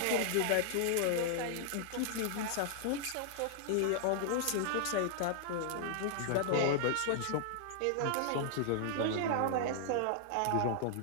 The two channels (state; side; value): different; both; correlation -0.01